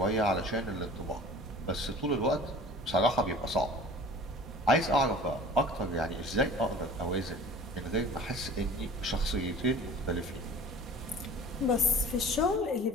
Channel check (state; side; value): normal; both; correlation 0.43